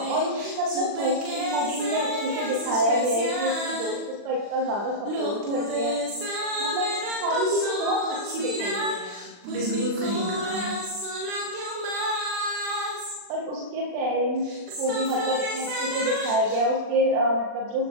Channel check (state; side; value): late; left; 40 ms